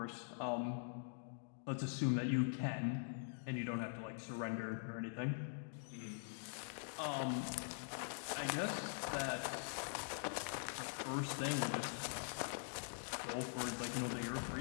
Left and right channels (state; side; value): silent; right; digital silence